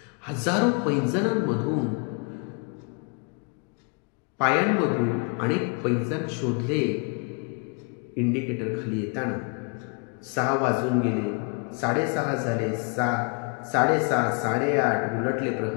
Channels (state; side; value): quieter; right; 35.4 dB